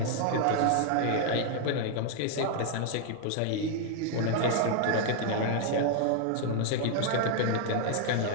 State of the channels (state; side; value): different; both; correlation 0.00